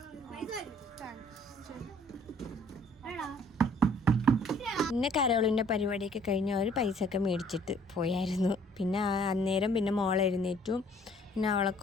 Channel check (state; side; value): normal; both; correlation 0.58